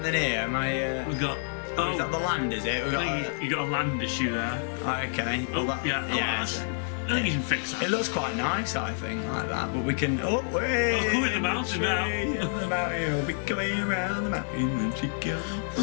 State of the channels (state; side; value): silent; right; 59 dB below the other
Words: here? Am I? We've got. Is that the land? Is it? You got a land issue there. Okay. Yeah. I think you can fix that. It looks quite nice, I think, like that. But we can. We're in the mountain now. The mountain, we'll be coming around the mountain when she goes.